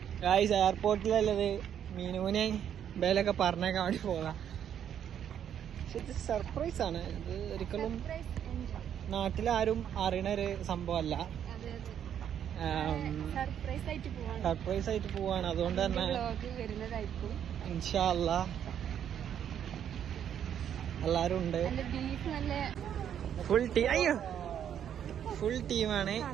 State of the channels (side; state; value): left; quieter; 9.3 dB